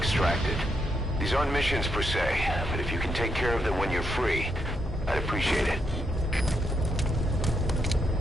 These aren't missions per se, but if you can take care of them when you're free, I'd appreciate it.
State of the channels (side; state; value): both; normal; correlation 0.80